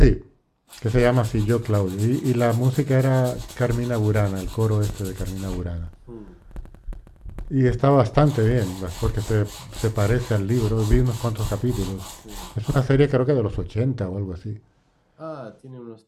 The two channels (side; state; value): both; identical; correlation 1.00